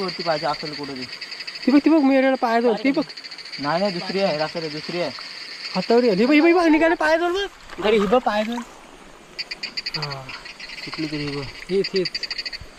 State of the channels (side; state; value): both; identical; correlation 1.00